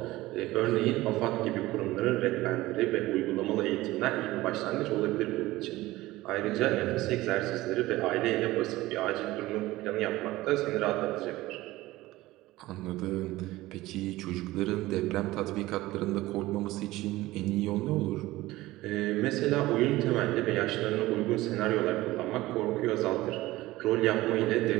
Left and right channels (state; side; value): quieter; left; 18.0 dB